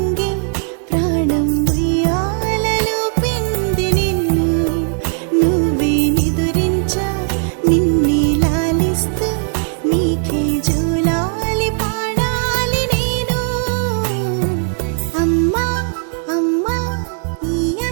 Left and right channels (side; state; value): left; silent; digital silence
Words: ప్రాణం ఉయ్యాలలో పిండి నిన్ను నువ్వే నిదురించా నిన్నే లాలిస్తూ నీకే జూలాలి పాడాలి నేను అమ్మా అమ్మా ఈ